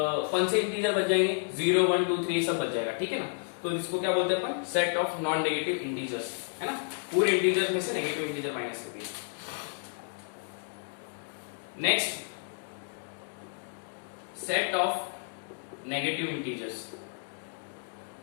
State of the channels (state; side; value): silent; right; 57 dB below the other